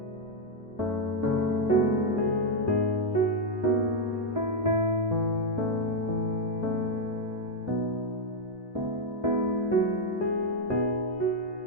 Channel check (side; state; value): both; normal; correlation 0.00